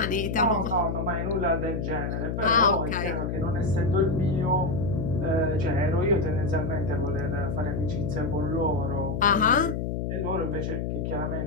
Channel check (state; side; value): noise; left; hum, 2 dB below the sound